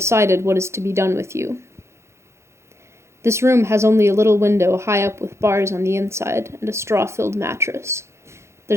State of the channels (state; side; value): late; left; 0.13 ms